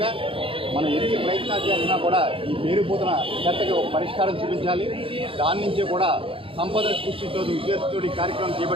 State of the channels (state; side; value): late; left; 0.26 ms